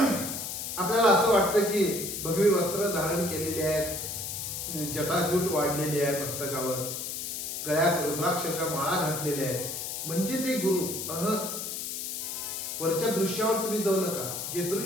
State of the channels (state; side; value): noise; left; hiss, 5 dB below the sound